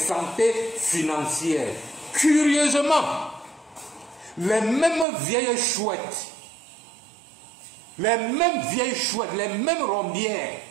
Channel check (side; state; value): left; drops out; at 5.1 s